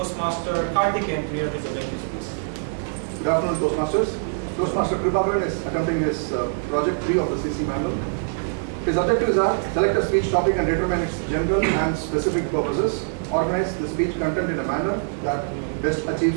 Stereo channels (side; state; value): left; silent; digital silence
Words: Karthik and three of his objectives, please. Good afternoon, Toastmasters. Toastmaster Prabhakar is attempting his project 3 of the CC manual. His objectives are select a speech topic and determine its general and specific purposes, organize the speech content in a manner that best